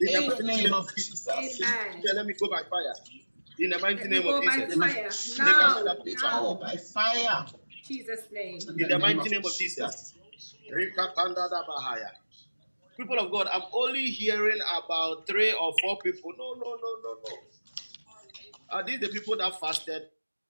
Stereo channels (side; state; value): both; inverted; correlation -1.00